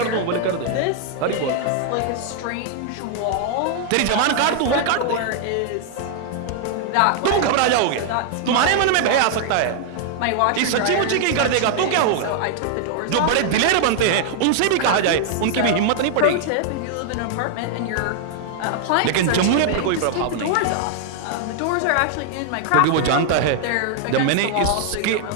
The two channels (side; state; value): both; different; correlation 0.00